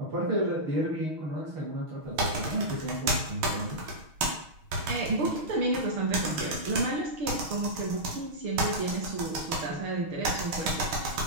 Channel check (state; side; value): late; left; 6.4 ms